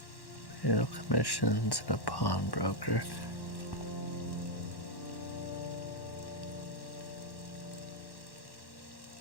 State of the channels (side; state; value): right; late; 1.1 ms